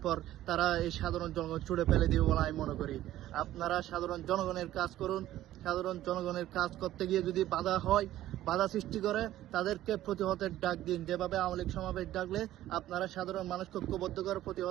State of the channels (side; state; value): left; quieter; 13.9 dB